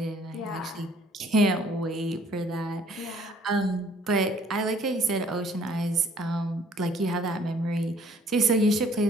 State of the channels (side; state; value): both; normal; correlation 0.58